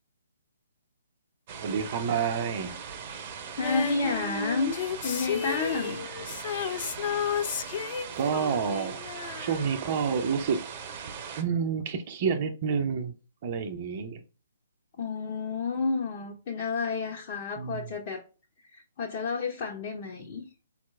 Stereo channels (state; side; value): inverted; both; correlation -0.49